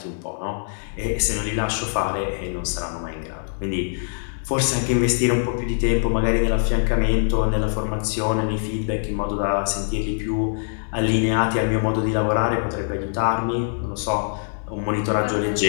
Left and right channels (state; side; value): silent; right; digital silence